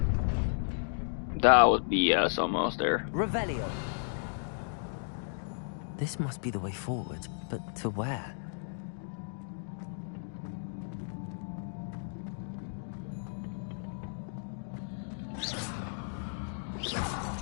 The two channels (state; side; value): silent; right; digital silence